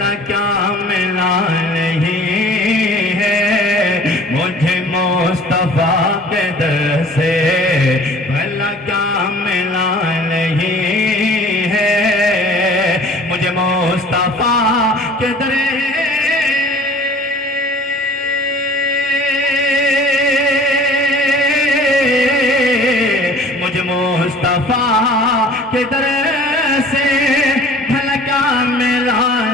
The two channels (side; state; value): both; normal; correlation 0.49